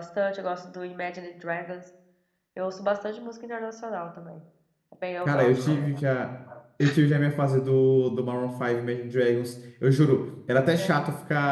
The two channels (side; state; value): both; identical; correlation 1.00